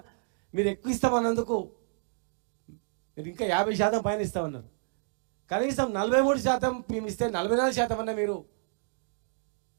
మీరు ఎక్కువ ఇస్తామన్నందుకు మీరు ఇంకా 50% పైన ఇస్తామన్నారు. కనీసం 43% మేము ఇస్తే 44% అన్న మీరు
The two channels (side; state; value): left; silent; digital silence